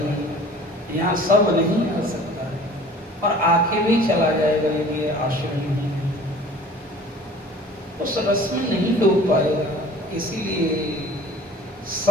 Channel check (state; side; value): normal; both; correlation 0.48